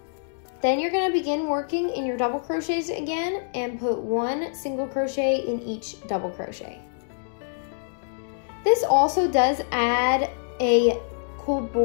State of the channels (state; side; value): silent; right; digital silence